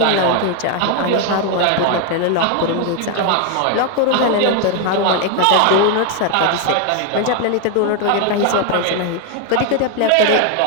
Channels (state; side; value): different; both; correlation 0.01